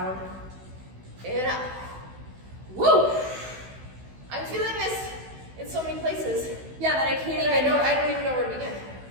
And up. Woo! I'm feeling this in so many places. Yeah, that I can't And even. I don't even know where to begin.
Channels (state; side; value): late; left; 16 ms